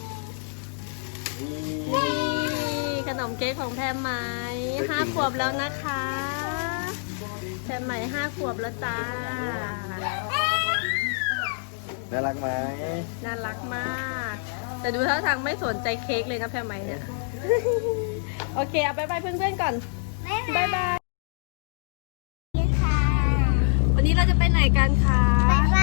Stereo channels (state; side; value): silent; right; digital silence